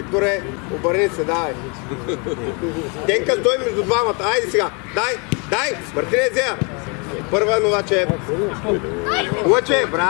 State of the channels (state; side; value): quieter; right; 33.2 dB